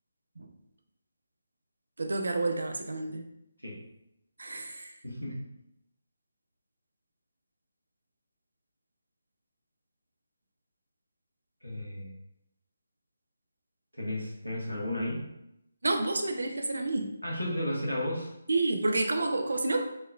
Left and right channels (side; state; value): both; inverted; correlation -0.88